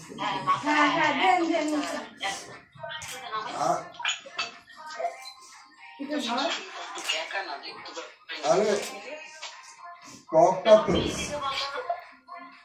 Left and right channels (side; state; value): both; identical; correlation 1.00